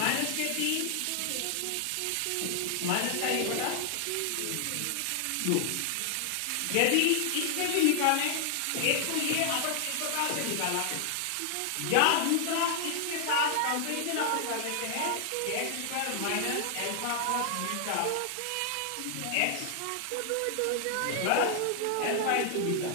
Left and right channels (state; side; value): different; both; correlation 0.00